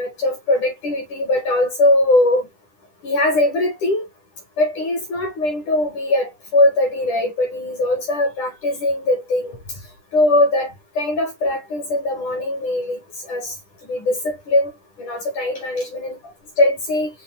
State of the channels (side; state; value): right; late; 10 ms